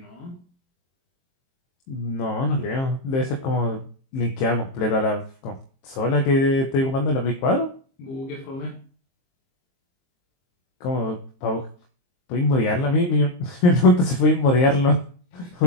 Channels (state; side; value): late; right; 23 ms